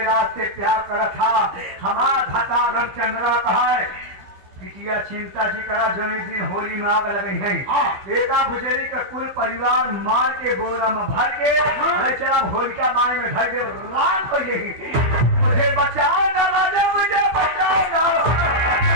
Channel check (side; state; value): left; late; 16 ms